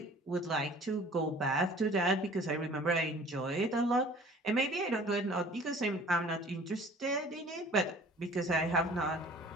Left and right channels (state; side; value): normal; both; correlation 0.49